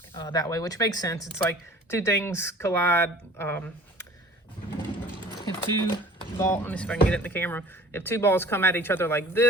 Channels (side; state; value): both; normal; correlation 0.46